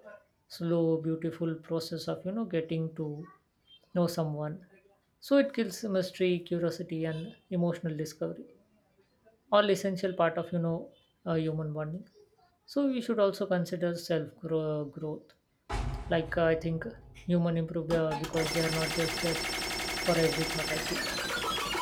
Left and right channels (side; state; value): both; identical; correlation 1.00